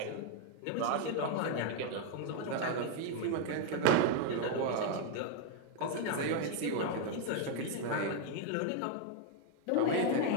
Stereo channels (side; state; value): both; different; correlation 0.00